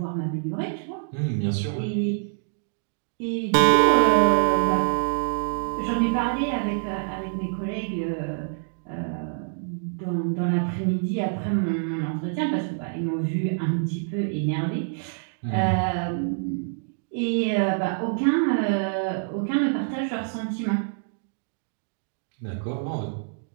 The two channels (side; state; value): left; silent; digital silence